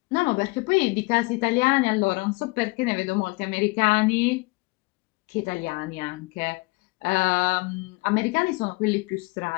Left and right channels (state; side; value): quieter; right; 25.7 dB